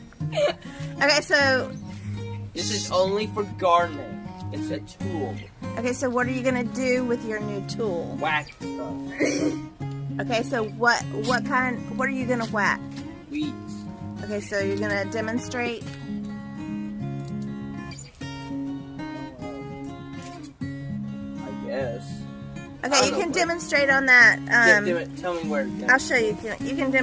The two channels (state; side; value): identical; both; correlation 1.00